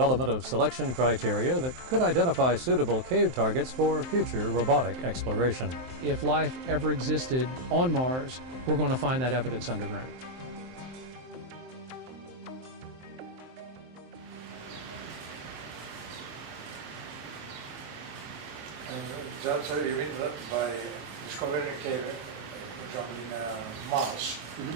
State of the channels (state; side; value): late; left; 23 ms